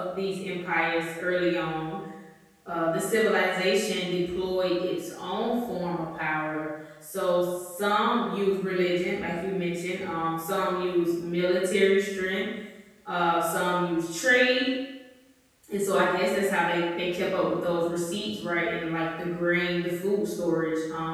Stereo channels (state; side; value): identical; both; correlation 1.00